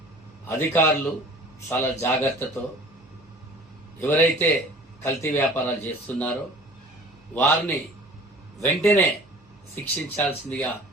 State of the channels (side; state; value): both; normal; correlation 0.46